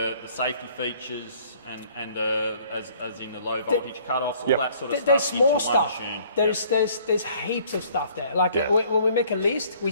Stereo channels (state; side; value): inverted; both; correlation -0.58